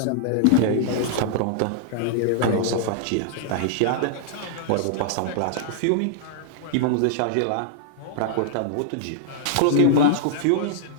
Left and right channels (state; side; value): different; both; correlation -0.01